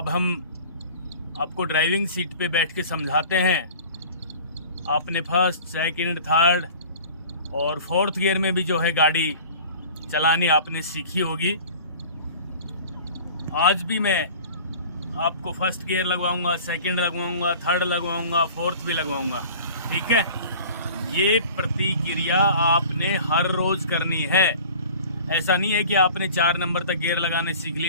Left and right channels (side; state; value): both; inverted; correlation -0.43